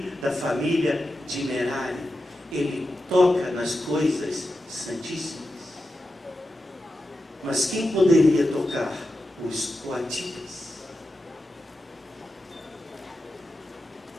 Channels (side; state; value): both; normal; correlation 0.90